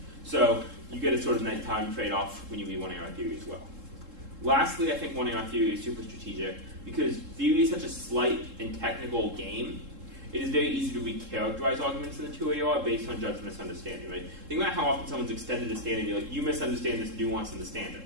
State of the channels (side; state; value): left; late; 3.7 ms